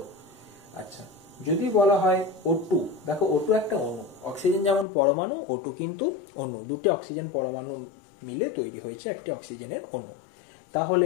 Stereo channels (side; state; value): right; drops out; at 4.9 s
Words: আচ্ছা, যদি বলা হয় O2, দেখো O2 একটা অণু, অক্সিজেন যেমন পরমাণু, O2 কিন্তু অণু, দুটি অক্সিজেন পরমাণু মিলে তৈরি হয়েছে একটি অক্সিজেনের অণু।